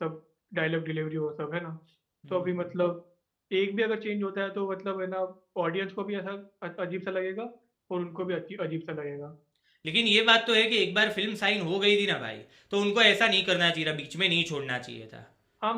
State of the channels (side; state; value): both; identical; correlation 1.00